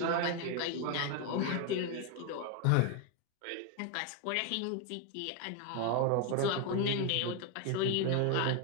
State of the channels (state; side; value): different; both; correlation 0.01